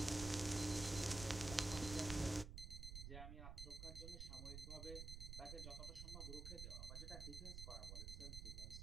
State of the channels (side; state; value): right; noise; rumble, 6 dB below the sound